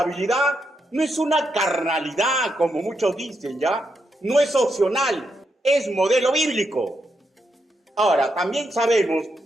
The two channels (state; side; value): normal; both; correlation 0.82